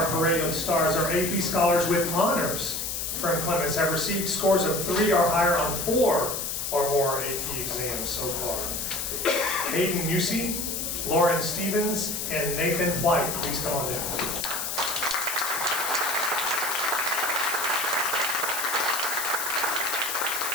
parade of stars, our AP scholars with honors from Clemens have received scores of 3 or higher on 4 or more AP exams so far. Hayden Musey, Lauren Stevens, and Nathan White. Please come on down.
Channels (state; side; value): noise; left; hiss, 3 dB below the sound